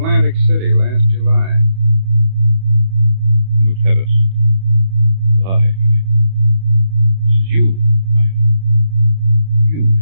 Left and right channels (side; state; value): left; late; 31 ms